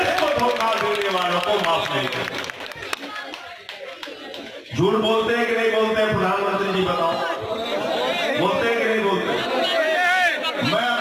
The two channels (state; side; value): identical; both; correlation 1.00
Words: को धोखा देने वालों को माफ नहीं करेंगे। झूठ बोलते हैं कि नहीं बोलते हैं? प्रधानमंत्री जी बताओ, बोलते हैं कि नहीं बोलते? मैं